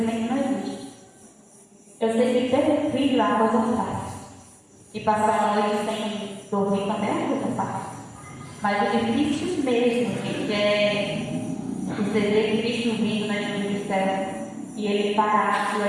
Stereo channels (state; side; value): identical; both; correlation 1.00